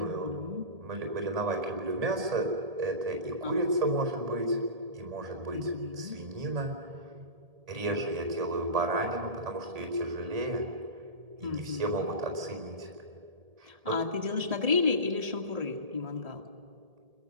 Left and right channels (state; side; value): late; left; 1.8 ms